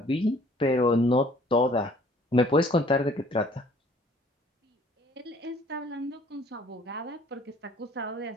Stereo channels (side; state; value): both; normal; correlation 0.56